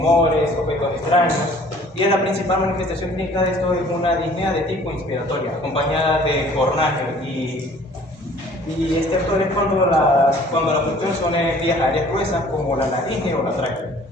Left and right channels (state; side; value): normal; both; correlation 0.53